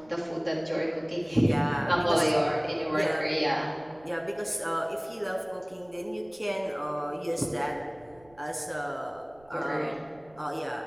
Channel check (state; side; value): noise; right; rumble, 28 dB below the sound